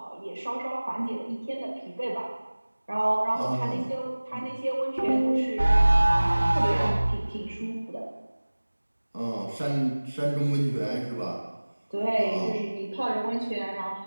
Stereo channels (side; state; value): both; inverted; correlation -1.00